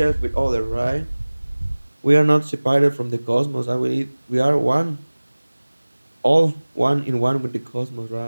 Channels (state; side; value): inverted; both; correlation -1.00